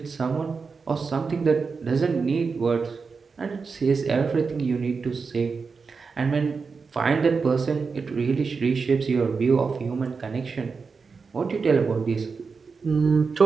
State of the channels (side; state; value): left; quieter; 4.9 dB